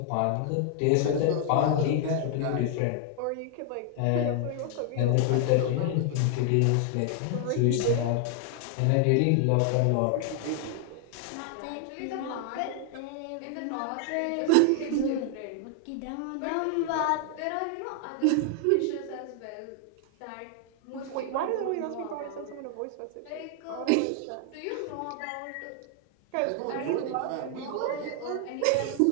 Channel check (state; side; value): different; both; correlation 0.00